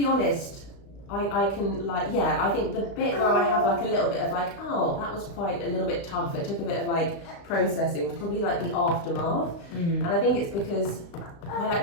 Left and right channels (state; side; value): late; right; 35 ms